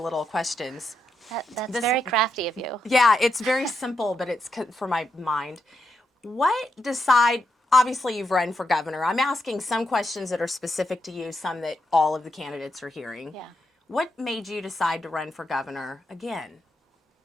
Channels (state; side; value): normal; both; correlation 0.83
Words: questions. That's very crafty of you. Yeah, it's very simple, but it's for my mind. Obviously you've run for governor. I'm asking some questions that are specific to you, some that all of the candidates are hearing. Yeah. What made you decide to run for governor again?